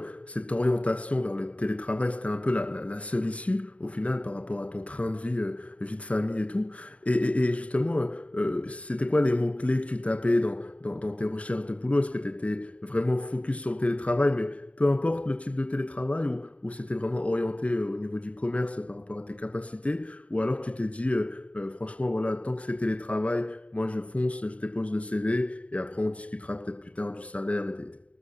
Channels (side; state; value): right; late; 0.065 ms